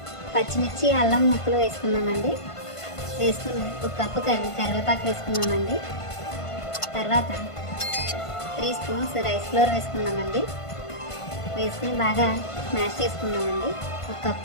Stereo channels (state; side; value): late; right; 1.5 ms